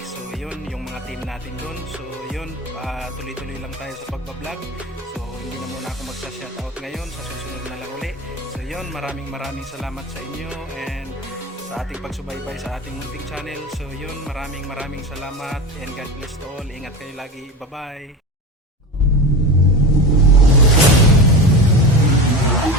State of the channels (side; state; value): both; normal; correlation 0.27